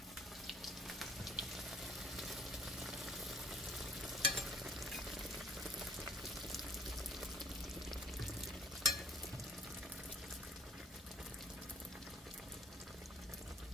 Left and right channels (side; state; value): both; normal; correlation 0.54